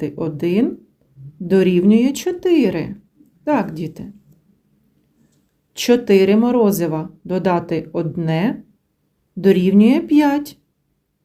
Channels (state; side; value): identical; both; correlation 1.00